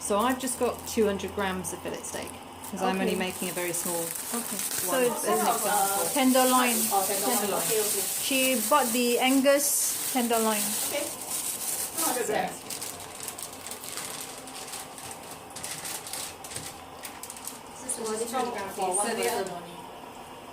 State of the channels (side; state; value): both; identical; correlation 1.00